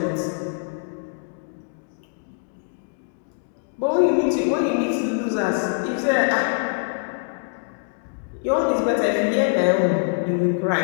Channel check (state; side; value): silent; right; digital silence